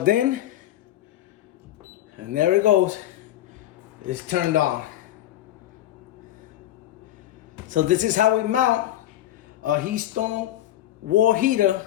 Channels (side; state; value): right; quieter; 13.3 dB